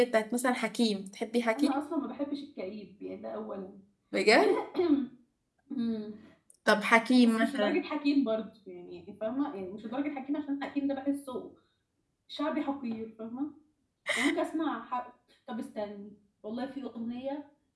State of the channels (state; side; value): identical; both; correlation 1.00